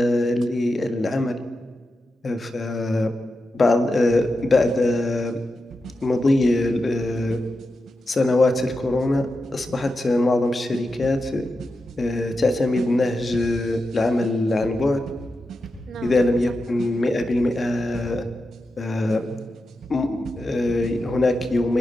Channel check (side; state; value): both; normal; correlation 0.89